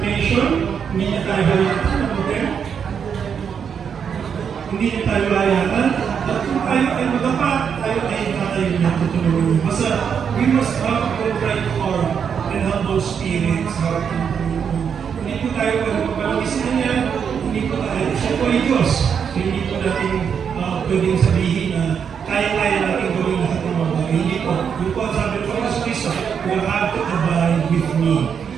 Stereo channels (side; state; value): left; quieter; 7.2 dB